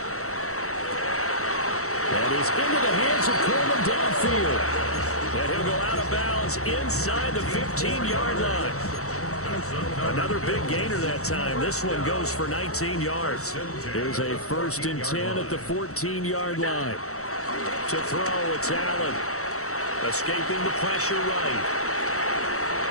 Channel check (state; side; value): late; right; 0.64 ms